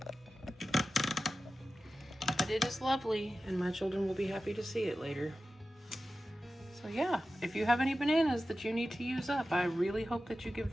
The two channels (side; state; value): both; normal; correlation 0.94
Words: But it is lovely, and my children will be happy to see it later. So yeah, if you have any bananas that you need to use up, I really hope that you give